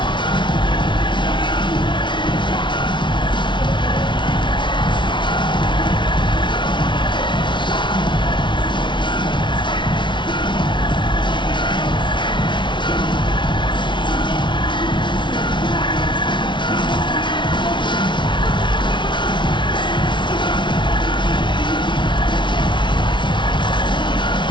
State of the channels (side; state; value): right; late; 0.23 ms